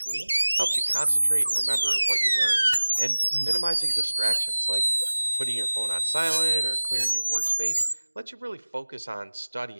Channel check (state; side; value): inverted; both; correlation -1.00